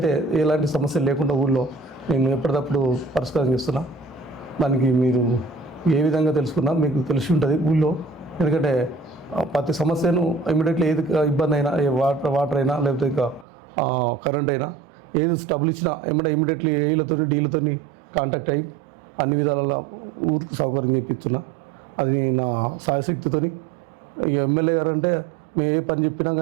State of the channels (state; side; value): drops out; left; at 13.5 s